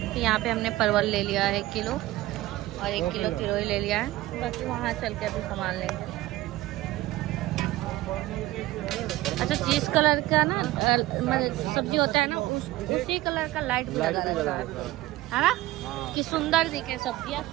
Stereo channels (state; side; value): quieter; left; 17.3 dB